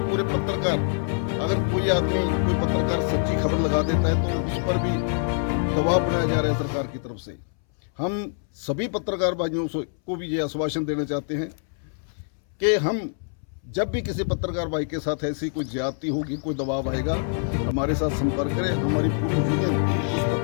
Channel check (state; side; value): silent; right; 62 dB below the other